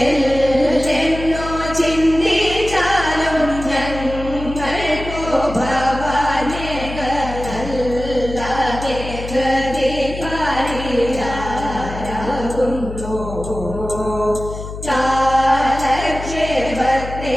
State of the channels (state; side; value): noise; left; hum, 9 dB below the sound